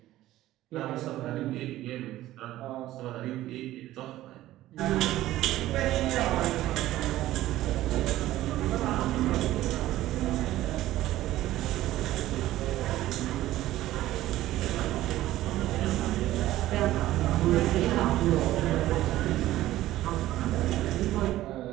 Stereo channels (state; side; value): quieter; left; 15.0 dB